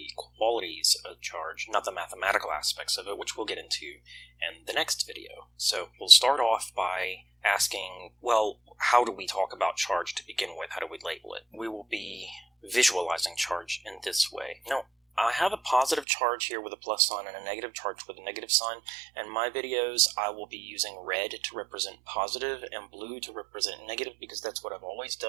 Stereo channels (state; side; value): drops out; left; at 16.1 s